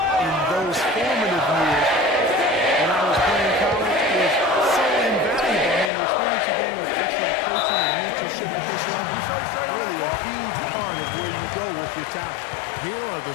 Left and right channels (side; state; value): right; drops out; at 5.9 s